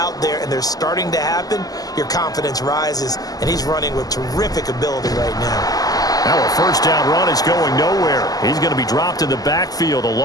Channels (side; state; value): right; late; 0.18 ms